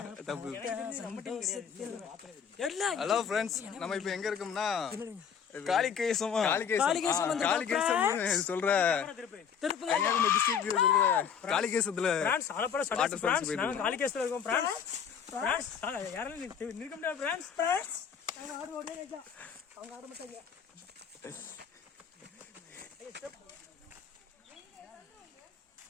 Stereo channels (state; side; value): quieter; right; 7.4 dB